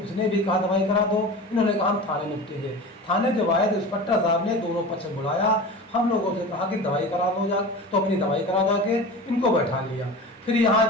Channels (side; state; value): both; normal; correlation 0.33